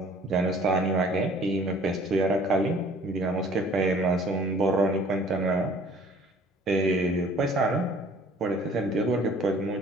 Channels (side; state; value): both; normal; correlation 0.54